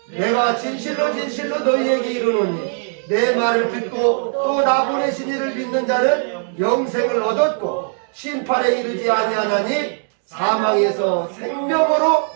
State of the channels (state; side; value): silent; left; digital silence